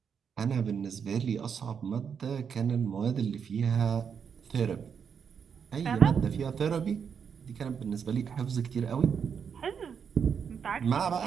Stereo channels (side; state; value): left; quieter; 7.0 dB